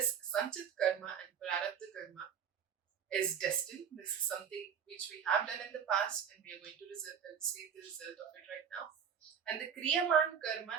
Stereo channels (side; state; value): left; quieter; 7.7 dB